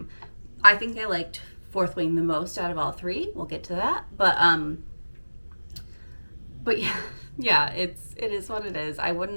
I think I liked Fourth Wing the most out of all three. We'll get to that. But yeah, it is what it is. I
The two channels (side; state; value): both; inverted; correlation -1.00